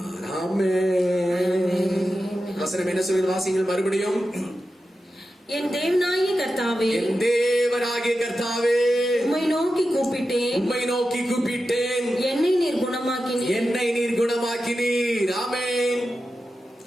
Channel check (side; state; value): both; normal; correlation 0.91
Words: ஆமென். வசனம் என்ன சொல்கிறது? வாசிங்கள் மறுபடியும். என் தேவனாகிய கர்த்தாவே, என் தேவனாகிய கர்த்தாவே, உம்மை நோக்கி கூப்பிட்டேன், உம்மை நோக்கி கூப்பிட்டேன், என்னை நீர் குணமாக்கினீர், என்னை நீர் குணமாக்கினீர். ஆமென்.